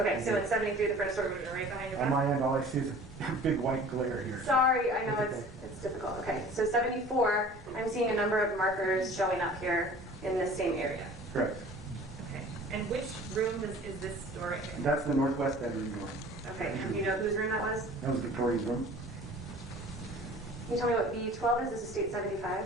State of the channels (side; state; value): both; normal; correlation 0.45